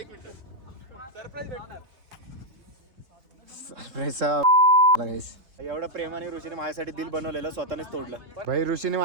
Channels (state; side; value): late; left; 3.7 ms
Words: एवढा प्रेमाने ऋषीने माझ्यासाठी दिल बनवलेलं, स्वतःनेच तोडलं. भाई ऋषीने